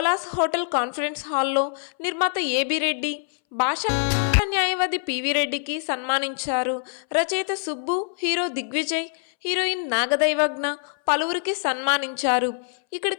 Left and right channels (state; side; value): silent; right; 62 dB below the other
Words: హోటల్ కాన్ఫరెన్స్ హాల్లో నిర్మాత ఏబి రెడ్డి, భాషా న్యాయవాది పివి రెడ్డికి సన్మానించారు. రచయిత సుబ్బు, హీరో దిగ్విజయ్, హీరోయిన్ నాగదైవజ్ఞ పలువురికి సన్మానించారు.